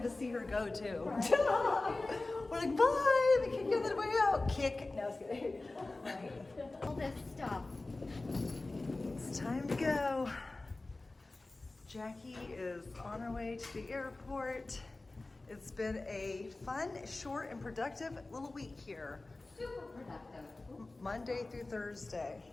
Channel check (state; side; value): quieter; right; 3.1 dB